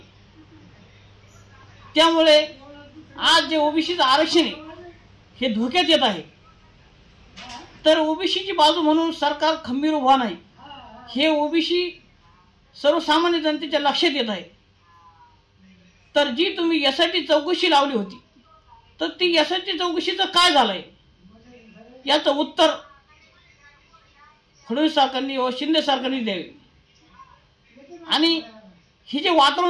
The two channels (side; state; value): both; identical; correlation 1.00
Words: त्यामुळे आज जे ओबीसीचं आरक्षण आहे हे धोक्यात येत आहे. तर ओबीसीची बाजू म्हणून सरकार खंबीर उभा नाही, हे ओबीसी सर्वसामान्य जनतेच्या लक्षात येत आहे. तर जी तुम्ही SIT चौकशी लावली होती, तर ती SIT चौकशीचं काय झालंय याचं उत्तर फडणवीस सरकारने व शिंदे सरकारने द्यावे. आणि हे जे